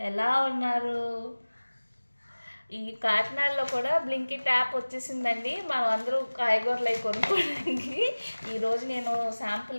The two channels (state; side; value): inverted; both; correlation -1.00